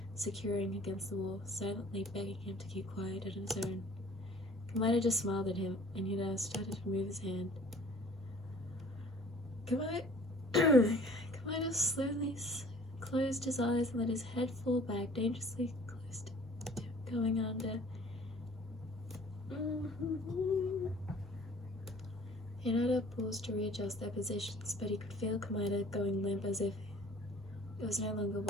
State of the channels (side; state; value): both; normal; correlation 0.51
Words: securing against the wall, silently begging him to keep quiet on his own. Komaeda just smiled at him, and Hinata started to move his hand. Komaeda slowly closed his eyes and let his head fall back, dangerously close to him, going under. Hinata paused to readjust their positions, but he could feel Komaeda going limp as if it was no longer